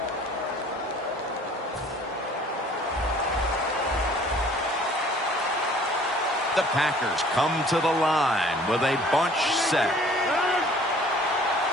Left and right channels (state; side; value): normal; both; correlation 0.53